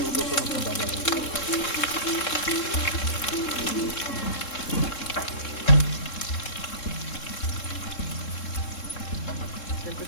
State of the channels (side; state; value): right; late; 3.7 ms